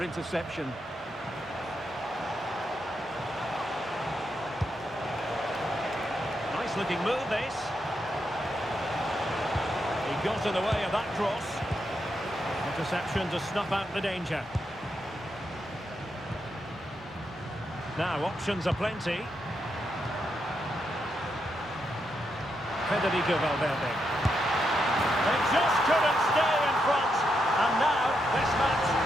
interception. Nice looking move, this. He got in the way of that cross. Interception to snuff out the danger. Now, options are plenty. Federico Valverde. They just couldn't stay in front. And now, this match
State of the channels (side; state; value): both; normal; correlation 0.82